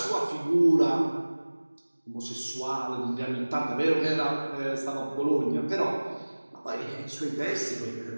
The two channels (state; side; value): inverted; both; correlation -1.00